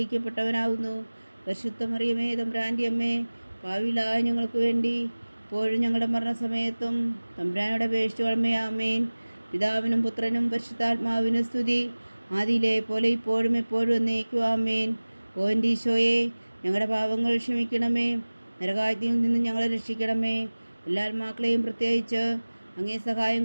പരിശുദ്ധ മറിയമേ തമ്പുരാൻ്റെ അമ്മേ, പാപികളായ ഞങ്ങൾക്ക് വേണ്ടി ഇപ്പോഴും ഞങ്ങളുടെ മരണസമയത്തും തമ്പുരാനോട് അപേക്ഷിച്ചുകൊള്ളണമേ. ആമേൻ. പിതാവിനും പുത്രനും പരിശുദ്ധാത്മാവിനും സ്തുതി, ആദിയിലെ പോലെ ഇപ്പോഴും എപ്പോഴും എന്നേക്കും. ആമേൻ. ഓ എൻ്റെ ഈശോയെ, ഞങ്ങളുടെ പാപങ്ങൾ ക്ഷമിക്കണമേ, നരകാഗ്നിയിൽ നിന്ന് ഞങ്ങളെ രക്ഷിക്കണമേ. എല്ലാ ആത്മാക്കളെയും പ്രത്യേകിച്ച് അങ്ങേ സഹായം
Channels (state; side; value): inverted; both; correlation -1.00